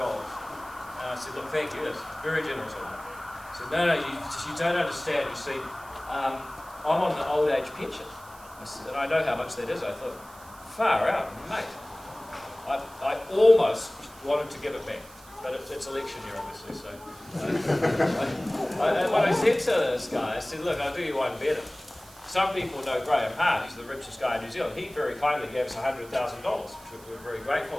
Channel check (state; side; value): noise; right; hiss, 22 dB below the sound